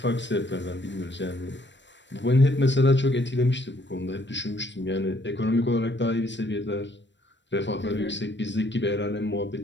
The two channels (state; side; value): late; right; 0.53 ms